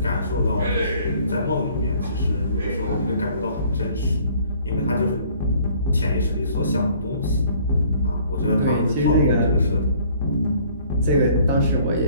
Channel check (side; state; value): both; inverted; correlation -0.57